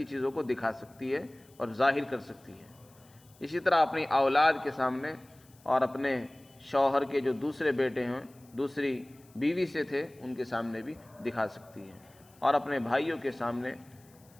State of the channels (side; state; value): left; noise; hiss, 29 dB below the sound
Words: چیزوں کو دکھا سکتی ہے اور ظاہر کر سکتی ہے۔ اسی طرح اپنی اولاد کے سامنے اور اپنے شوہر کے جو دوسرے بیٹے ہیں، دوسری بیوی سے تھے، ان کے سامنے بھی دکھا سکتی ہے، اور اپنے بھائیوں کے سامنے،